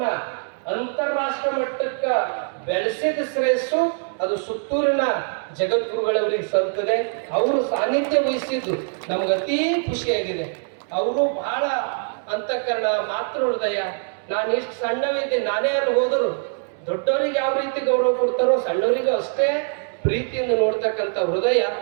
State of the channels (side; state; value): left; silent; 59 dB below the other